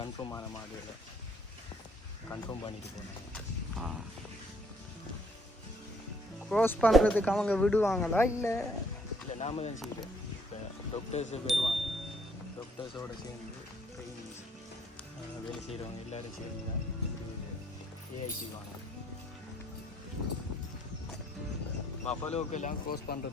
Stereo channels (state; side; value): normal; both; correlation 0.65